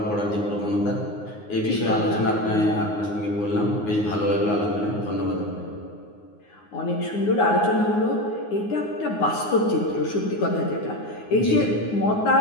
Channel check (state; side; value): late; right; 9.6 ms